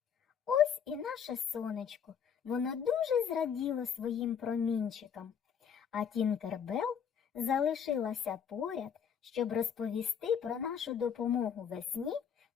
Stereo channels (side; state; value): right; quieter; 7.6 dB